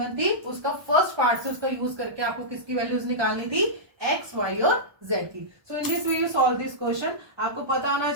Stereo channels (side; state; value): left; late; 1.2 ms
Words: थी उसका फर्स्ट पार्ट से उसका यूज करके आपको किसकी वैल्यूज निकालनी थी, एक्स वाई और जेड की। So in this way you solve this question. आपको पता होना